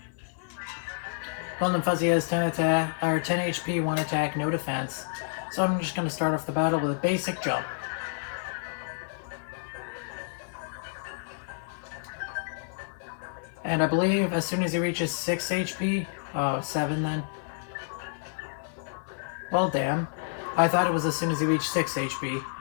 Golden Fuzzy has 10 attack, or 10 HP, 1 attack, no defense. So I'm just going to start off the battle with a basic jump. And I believe as soon as he reaches 6 HP, oh, 7 then. Well, damn. I thought it was as soon as he reached 6 HP,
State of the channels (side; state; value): right; silent; digital silence